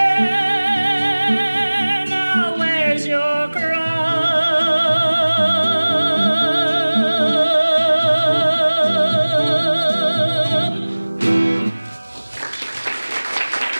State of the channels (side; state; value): both; inverted; correlation -1.00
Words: now wears your crown.